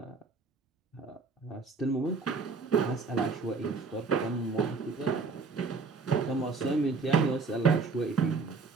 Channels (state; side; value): quieter; left; 4.4 dB